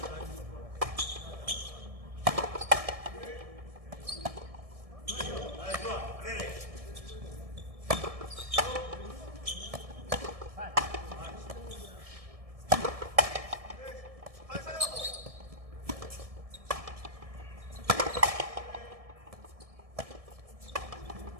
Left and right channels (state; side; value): late; left; 1.7 ms